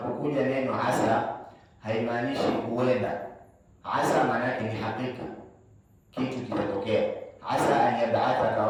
neno asa haimaanishi huenda. Asa maana yake ni hakika, kitu kitatokea. Asa an yab'athaka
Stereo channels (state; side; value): identical; both; correlation 1.00